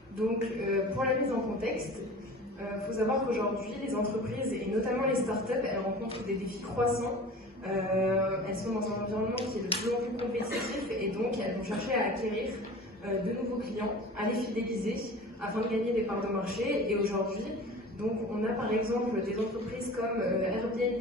Donc, pour la mise en contexte, faut savoir qu'aujourd'hui, les entreprises, et notamment les startups, elles rencontrent des défis croissants. Elles sont dans un environnement qui est de plus en plus compétitif et donc elles vont chercher à acquérir de nouveaux clients, à les fidéliser afin de gagner des parts de marché. Et aujourd'hui, donc, on a par exemple des entreprises comme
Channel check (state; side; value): normal; both; correlation 0.39